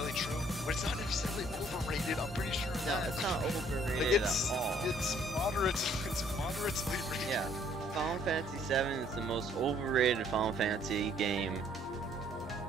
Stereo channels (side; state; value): both; normal; correlation 0.62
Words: true, but it's not necessarily overrated, I'm pretty sure. No, it's not overrated like, at all. It's moderately rated. Yeah, Final Fantasy 7 is the most overrated Final Fantasy game